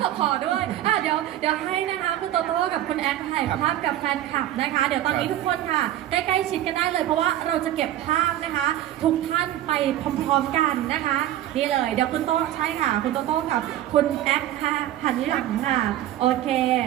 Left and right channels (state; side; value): quieter; left; 12.8 dB